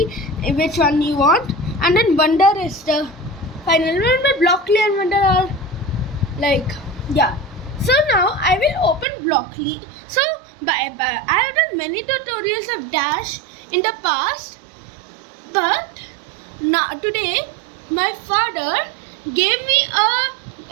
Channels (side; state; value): left; drops out; at 9.1 s